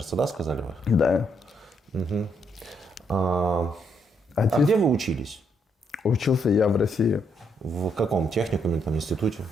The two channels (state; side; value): normal; both; correlation 0.74